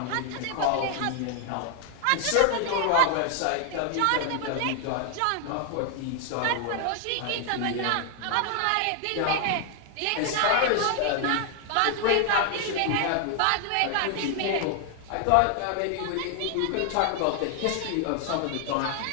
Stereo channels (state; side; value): different; both; correlation 0.00